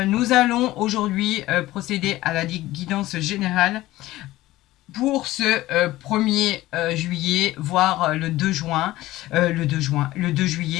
allons aujourd'hui procéder à la guidance générale pour ce 1er juillet, voire le 2 juin, le 2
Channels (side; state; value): right; quieter; 16.8 dB